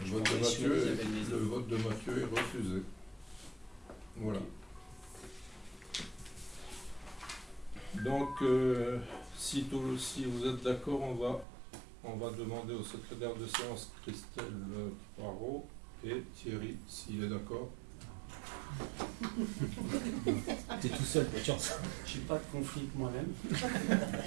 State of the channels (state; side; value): drops out; left; at 11.5 s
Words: Le vote de Mathieu est refusé. Voilà. Donc, si vous êtes d'accord, on va demander au secrétaire de séance Christelle Poirot et Thierry, s'il est d'accord. T'es tout seul, pas de chance. Je n'ai pas de conflit avec moi-même.